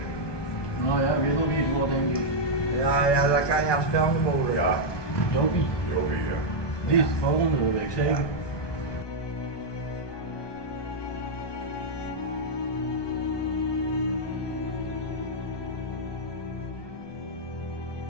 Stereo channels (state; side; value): late; right; 1.2 ms